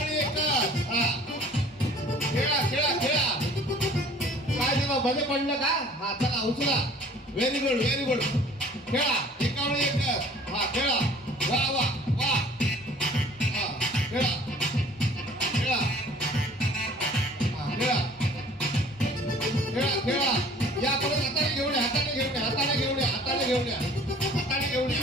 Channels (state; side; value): normal; both; correlation 0.51